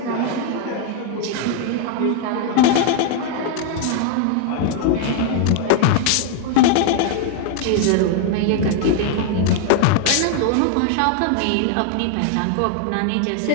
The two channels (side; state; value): both; different; correlation 0.00